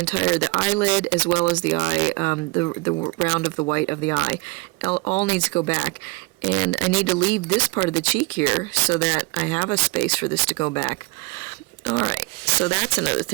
eyelid as well as the eye, the round of the white of the eye, all needs to go back. And I need to leave this part of the cheek here so that I have a space for this to go back. Alright, so that's another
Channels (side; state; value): left; quieter; 24.7 dB